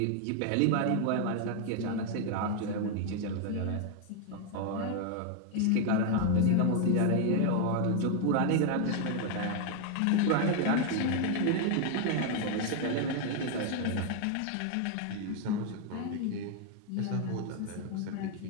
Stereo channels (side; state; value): both; different; correlation 0.01